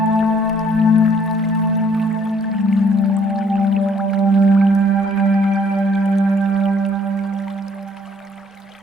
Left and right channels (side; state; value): both; normal; correlation 0.63